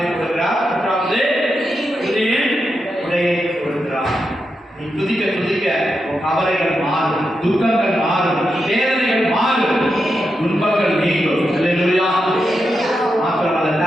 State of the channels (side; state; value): both; normal; correlation 0.86